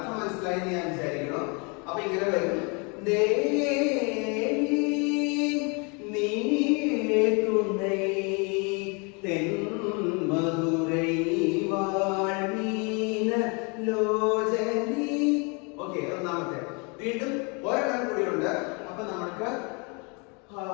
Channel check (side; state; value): right; quieter; 32.7 dB